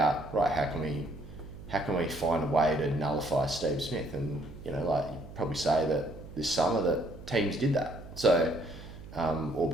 right, how can we find a way to nullify Steve Smith? And, you know, like you probably say that this summer that teams did that. So,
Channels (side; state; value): right; noise; hum, 15 dB below the sound